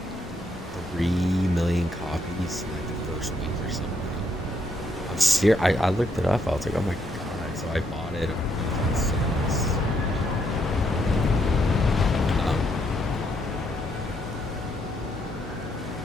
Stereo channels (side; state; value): both; normal; correlation 0.75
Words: 3 million copies in like the first week or something. I'm serious. I looked it up. I was like, oh my god. So I bought it.